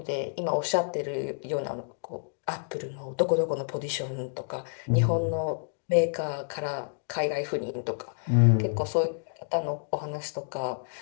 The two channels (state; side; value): silent; right; digital silence